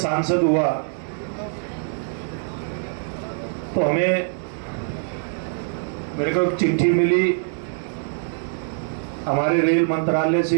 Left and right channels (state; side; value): silent; left; 63 dB below the other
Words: हुआ तो मेरे को एक चिट्ठी मिली हमारे रेल मंत्रालय